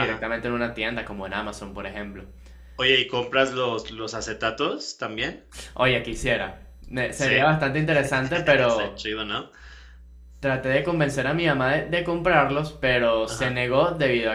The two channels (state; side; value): identical; both; correlation 1.00